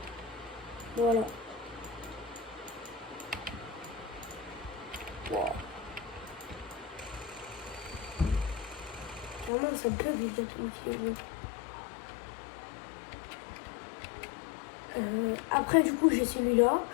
Voilà. Wow. Carrément, ça bug, les gars, tout après, du coup, j'ai celui-là.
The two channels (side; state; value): right; drops out; at 9.5 s